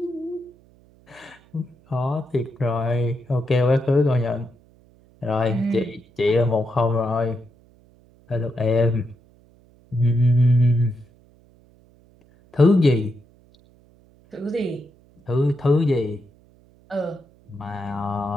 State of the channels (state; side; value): noise; right; hum, 30 dB below the sound